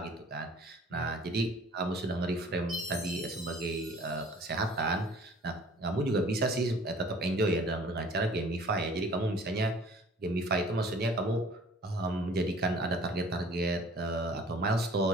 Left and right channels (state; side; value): normal; both; correlation 0.51